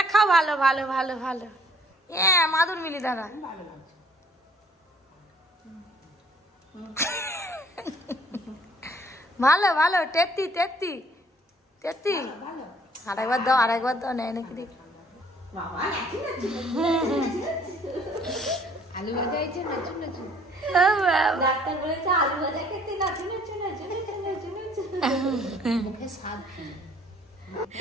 খাও, ভালো ভালো ভালো ভালো। হ্যাঁ মাদুর মিলি দাঁড়া। ভালো ভালো, তেত্তি তেত্তি তেত্তি। আরেকবার দাও, আরেকবার দাও, নেয় নাকি দেখি। আলু ভাজা হয়েছে, নাচু নাচু। ডাক্তার বলেছে আলু ভাজা খেতে, নাচু নাচু নাচু নাচু নাচু নাচু। মুখে স্বাদ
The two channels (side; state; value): both; normal; correlation 0.59